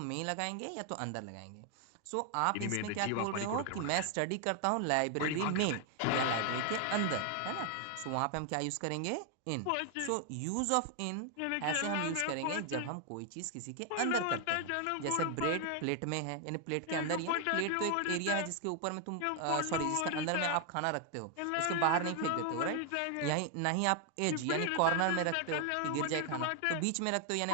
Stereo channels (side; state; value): both; different; correlation 0.00